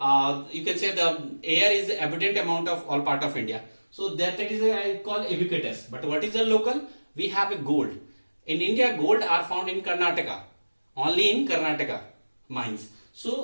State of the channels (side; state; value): both; inverted; correlation -1.00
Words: you can say the air is abundant amount of all part of India. So that is called ubiquitous. But what is the local? We have a gold. In India, gold are found in Karnataka. Only in Karnataka mines.